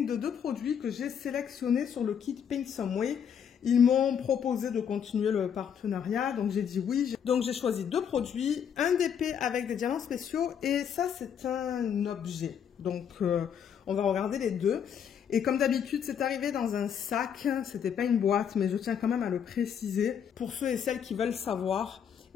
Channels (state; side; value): quieter; right; 8.0 dB